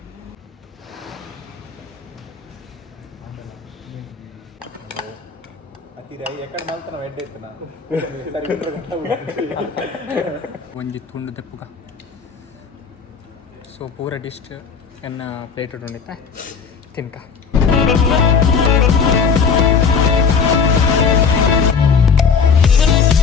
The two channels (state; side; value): quieter; right; 5.8 dB